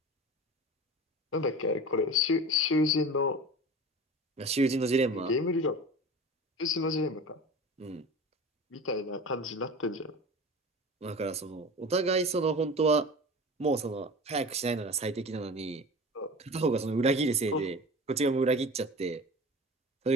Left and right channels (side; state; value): both; normal; correlation 0.34